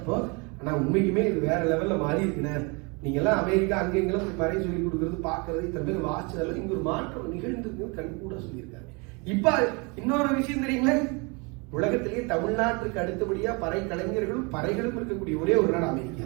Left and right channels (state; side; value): quieter; left; 30.3 dB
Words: ஆனா உண்மைக்குமே இது வேற லெவல்ல மாறி இருக்குண்ணே, நீங்க எல்லாம் அமெரிக்கா அங்க எங்கெல்லாம் போய் பறை சொல்லி கொடுக்கறது பாக்குறது இத்தனை பேர் வாசிச்சதெல்லாம் இங்க ஒரு மாற்றம் நிகழ்ந்து கண் கூட சொல்லியிருக்காங்க. இப்ப இன்னொரு விஷயம் தெரியுங்களே, உலகத்திலேயே தமிழ்நாட்டுக்கு அடுத்தபடியா பறை கலைஞர்களும் பறைகளும் இருக்கக்கூடிய ஒரே ஒரு நாடு அமெரிக்கா.